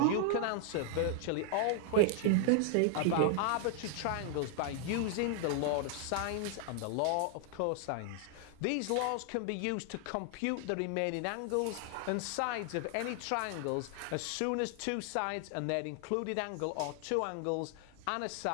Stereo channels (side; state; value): both; different; correlation 0.00